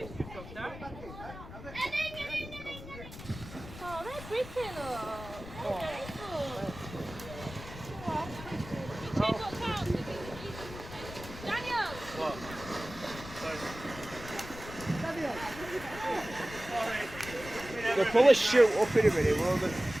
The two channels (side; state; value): left; noise; rumble, 13 dB below the sound